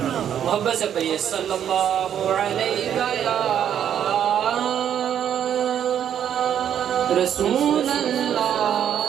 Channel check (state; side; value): quieter; left; 9.5 dB